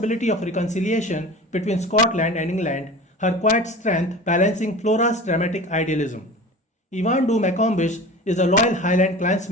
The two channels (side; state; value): both; normal; correlation 0.36